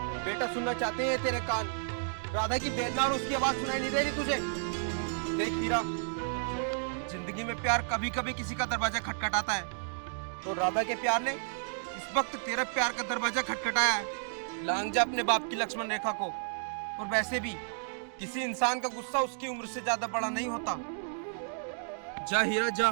बेटा सुनना चाहते हैं तेरे कान। राधा की वेदना और उसकी आवाज सुनाई नहीं दे रही तुझे? देख हीरा, जिंदगी में प्यार कभी कभी किसी का दरवाजा खटखटाता है, तो राधा के प्यार ने इस वक्त तेरा प्यार का दरवाजा खटखटाया है। लांग जा अपने बाप की लक्ष्मण रेखा को। और वैसे भी किसी इंसान का गुस्सा उसकी उम्र से ज्यादा बड़ा नहीं होता। जा हीरा,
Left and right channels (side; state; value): left; silent; digital silence